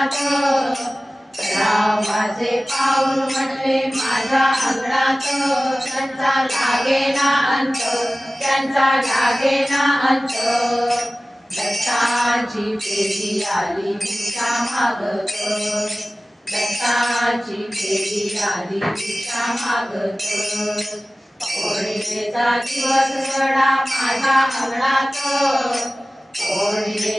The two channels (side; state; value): both; normal; correlation 0.97